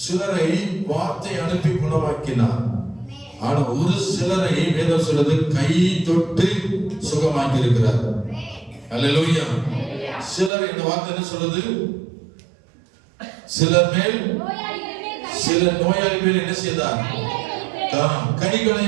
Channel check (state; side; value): drops out; left; at 10.5 s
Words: சிலரை வார்த்தை அனுப்பி குணமாக்கினார். ஆனா ஒரு சிலரை வேதம் சொல்றது கை தொட்டு சுகமாக்கி இருக்கிறார். அல்லேலூயா. சிலர் இந்த வார்த்தை என்ன சொல்றது? சிலர் மேல், சில நோயாளி மேல் என்ன செய்தார்? கைகளை